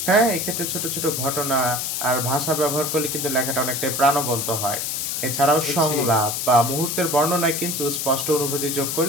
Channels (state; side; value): noise; left; hiss, 2 dB below the sound